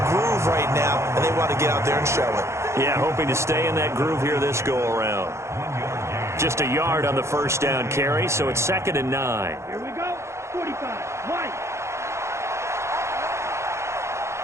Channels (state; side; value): late; left; 0.13 ms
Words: groove right now, and they want to get out there and show it. Yeah, hoping to stay in that groove here this go-around. Just a yard on the 1st down carry, so it's 2nd and 9. Here we go. 45. White.